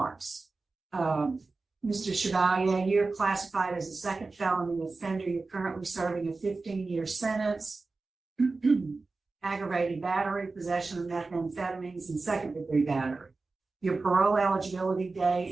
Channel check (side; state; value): left; quieter; 3.8 dB